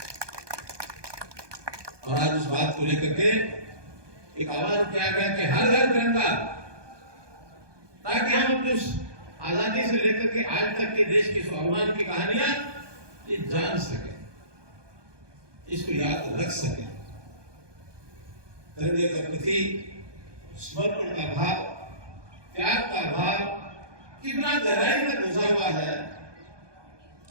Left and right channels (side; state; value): left; late; 1.2 ms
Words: और आज उस बात को लेकर के एक आह्वान किया गया कि हर घर तिरंगा, ताकि हम अपने आजादी से लेकर के आज तक के देश के स्वाभिमान की कहानियां ये जान सके, इसको याद रख सके। तिरंगे के प्रति समर्पण का भाव, त्याग का भाव कितना गहराई तक घुसा हुआ है।